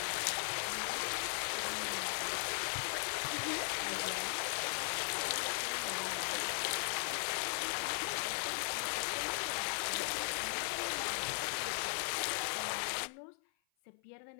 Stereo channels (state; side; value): silent; right; 52 dB below the other